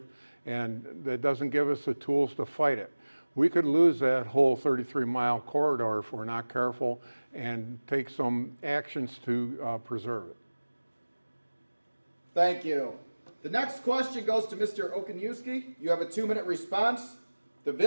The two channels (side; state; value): both; inverted; correlation -1.00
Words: and that doesn't give us the tools to fight it. We could lose that whole 33-mile corridor if we're not careful and take some actions to preserve it. Thank you. The next question goes to Mr. Okoniewski. You have a 2-minute response. The